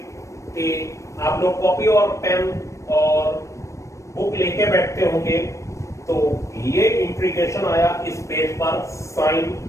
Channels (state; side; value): late; right; 0.15 ms